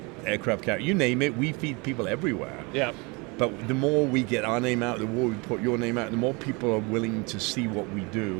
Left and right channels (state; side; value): quieter; left; 28.4 dB